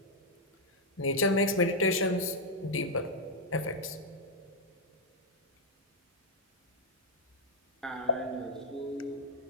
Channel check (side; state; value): both; normal; correlation -0.01